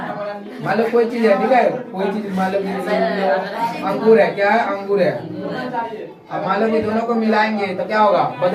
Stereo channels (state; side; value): identical; both; correlation 1.00